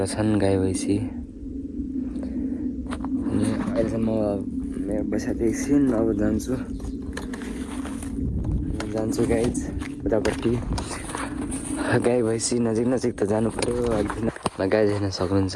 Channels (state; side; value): identical; both; correlation 1.00